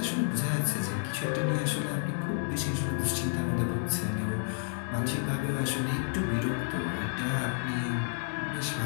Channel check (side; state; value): right; silent; 57 dB below the other